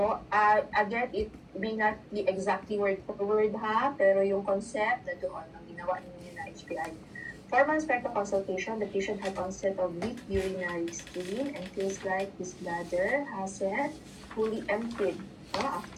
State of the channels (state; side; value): identical; both; correlation 1.00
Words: again, it may not be exactly word for word, ha, pero yung concept na doon, ang ginawa ninyo na HPI. 4 months prior to consultation, the patient had onset of weak urinary stream and feels like his bladder hasn't fully emptied